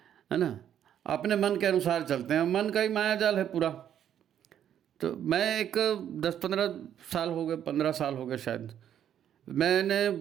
है ना। अपने मन के अनुसार चलते हैं, मन का ही माया जाल है पूरा। तो मैं एक 10-15 साल हो गए, 15 साल हो गए शायद, मैंने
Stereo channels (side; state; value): left; quieter; 9.9 dB